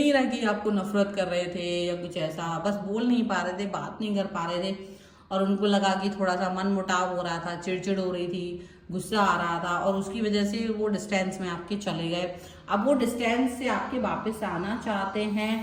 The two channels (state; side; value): identical; both; correlation 1.00